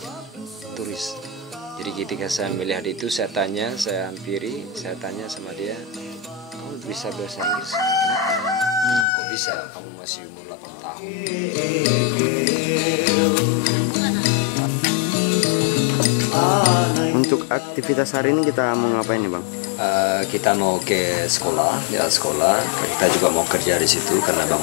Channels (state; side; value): drops out; right; at 9.1 s